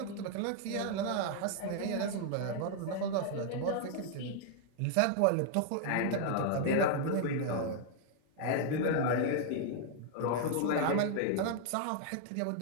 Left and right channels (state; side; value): different; both; correlation 0.00